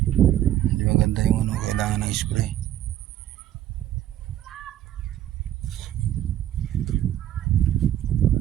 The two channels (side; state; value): left; quieter; 12.0 dB